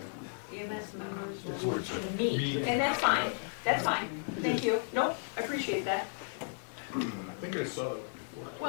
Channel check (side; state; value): right; silent; digital silence